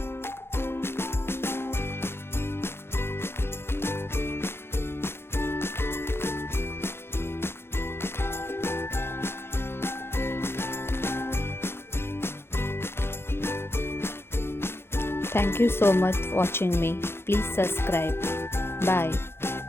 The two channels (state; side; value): late; right; 0.12 ms